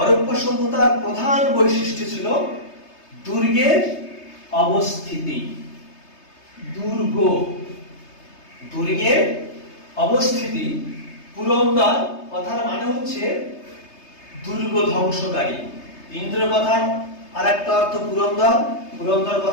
সভ্যতার প্রধান বৈশিষ্ট্য ছিল দুর্গের অবস্থিতি। দুর্গের অবস্থিতি। পুরন্দর কথার মানে হচ্ছে দুর্গ ধ্বংসকারী। ইন্দ্র কথার আর একটা অর্থ পুরন্দর। পুরন্দর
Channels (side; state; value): right; late; 3.3 ms